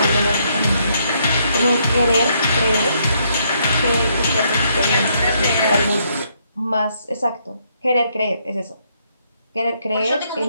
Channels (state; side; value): inverted; both; correlation -0.73